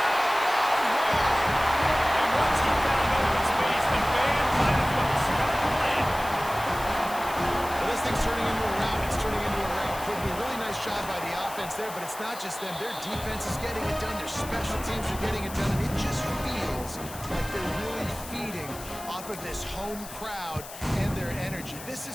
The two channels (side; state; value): left; noise; hiss, 14 dB below the sound